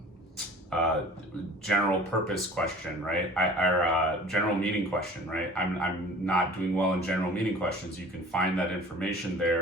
general purpose question, right? Or general meaning question, right? I'm not doing well in general meaning questions. You can find that information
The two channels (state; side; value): normal; both; correlation 0.45